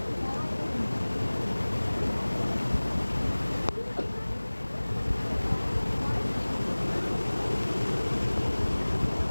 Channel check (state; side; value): inverted; both; correlation -1.00